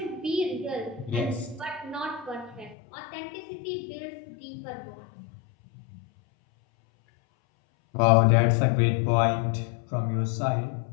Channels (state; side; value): drops out; right; at 2.8 s